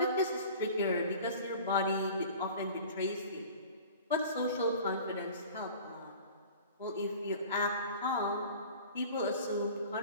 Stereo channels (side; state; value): both; inverted; correlation -0.42